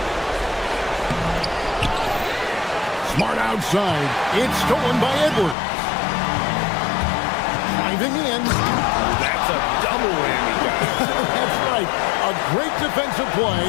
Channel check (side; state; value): right; drops out; at 5.6 s